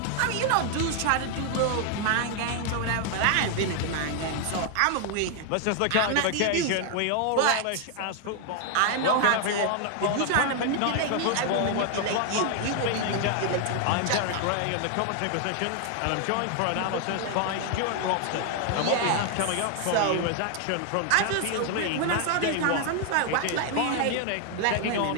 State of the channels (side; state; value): both; different; correlation 0.00